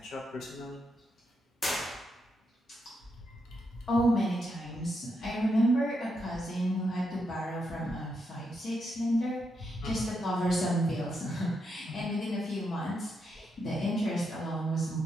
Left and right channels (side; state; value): both; normal; correlation 0.81